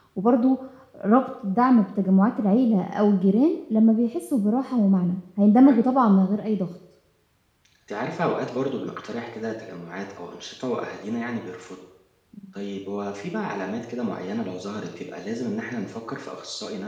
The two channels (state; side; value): identical; both; correlation 1.00